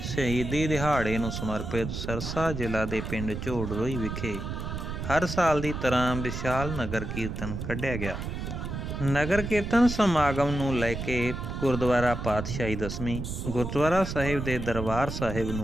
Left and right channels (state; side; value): noise; right; rumble, 5 dB below the sound